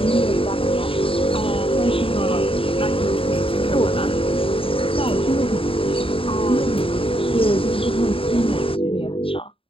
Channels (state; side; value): late; right; 0.26 ms